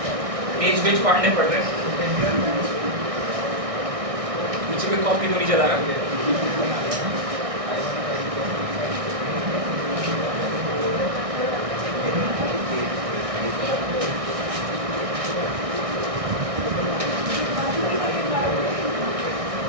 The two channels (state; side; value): late; left; 1.6 ms